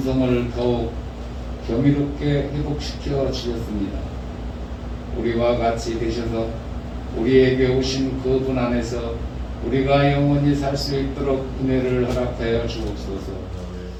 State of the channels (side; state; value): both; identical; correlation 1.00